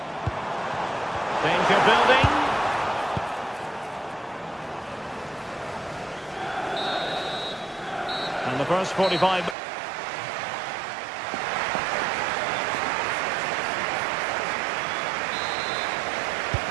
Danger building. And the first 45...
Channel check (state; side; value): drops out; left; at 9.6 s